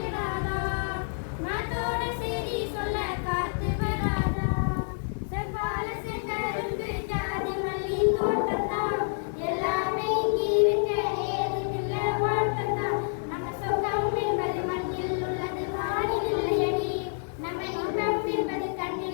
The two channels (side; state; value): right; silent; digital silence